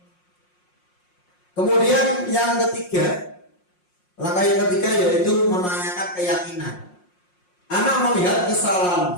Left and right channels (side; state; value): right; late; 5.6 ms